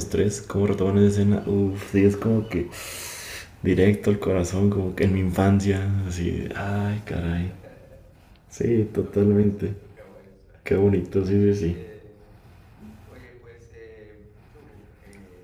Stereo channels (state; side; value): identical; both; correlation 1.00